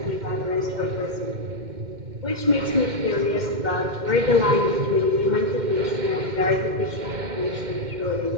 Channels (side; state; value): left; late; 2.1 ms